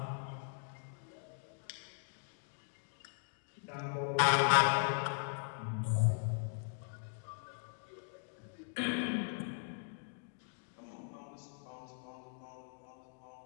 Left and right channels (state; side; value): silent; right; digital silence